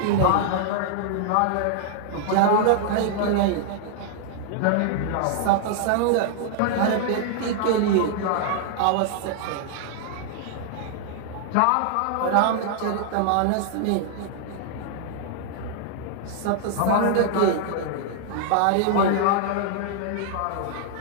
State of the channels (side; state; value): both; different; correlation 0.00